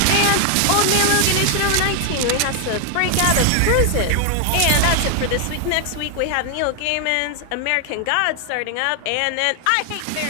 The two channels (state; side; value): different; both; correlation 0.00